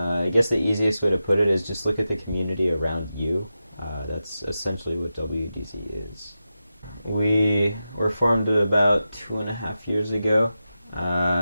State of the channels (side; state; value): both; inverted; correlation -0.91